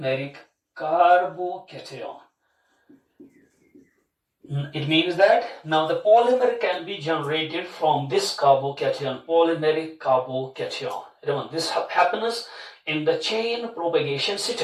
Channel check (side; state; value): both; identical; correlation 1.00